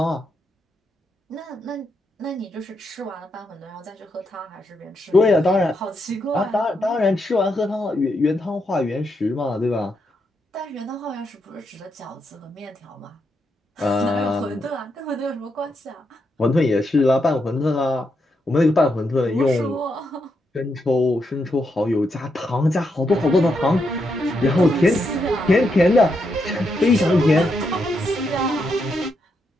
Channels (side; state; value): both; normal; correlation 0.82